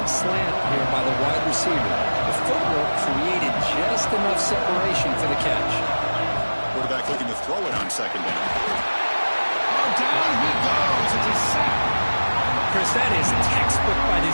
slant here by the wide receiver. The footwork created just enough separation for the catch. Quarterback looking to throw it on 2nd down. Oh, down he goes. It's a sack. Chris, that is textbook by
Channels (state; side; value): inverted; both; correlation -1.00